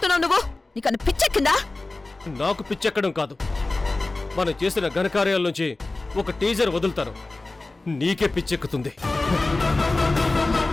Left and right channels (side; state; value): right; quieter; 3.1 dB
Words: నువ్వు? నీకన్నా పిచ్చెక్కిందా? నాకు పిచ్చెక్కడం కాదు, మనం చేసిన ఘనకార్యాల నుంచి ఒక టీజర్ వదులుతాను. నీకే పిచ్చెక్కుతుంది.